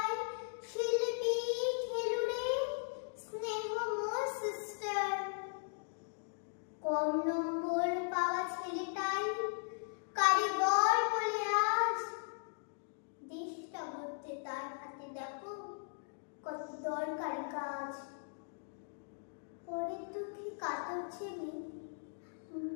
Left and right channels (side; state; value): right; silent; digital silence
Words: শিল্পী, খেলুড়ে, স্নেহময় সিস্টার। কম নম্বর পাওয়া ছেলেটাই কারিগর বলে আজ দেশটা গড়তে তার হাতে দেখো কত দরকারি কাজ। পরের দুঃখে কাতর ছেলে